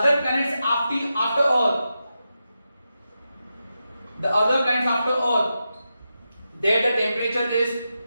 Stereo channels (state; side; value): inverted; both; correlation -0.89